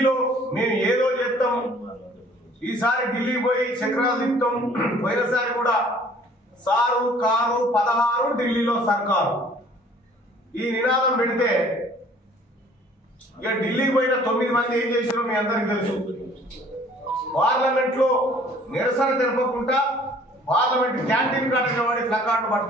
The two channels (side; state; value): both; normal; correlation 0.54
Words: మేము ఏదో చేస్తాం, ఈసారి ఢిల్లీ పోయి చక్రాలు తిప్పుతాం, పోయినసారి కూడా సారు కారు 16 ఢిల్లీలో సర్కారు ఈ నినాదం పెడితే ఇక ఢిల్లీకి పోయిన 9 మంది ఏం చేశారో మీ అందరికి తెలుసు. పార్లమెంట్ లో నిరసన తెలపకుండా పార్లమెంట్ క్యాంటీన్ కాడ నిలబడి ప్లకార్డు